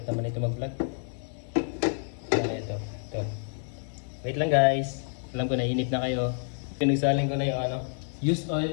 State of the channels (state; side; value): silent; right; 58 dB below the other